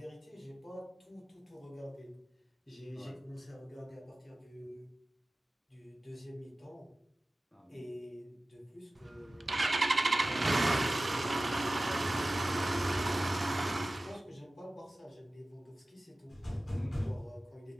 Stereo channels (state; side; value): normal; both; correlation 0.97